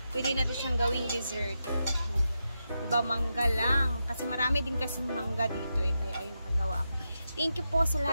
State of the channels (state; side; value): inverted; both; correlation -0.87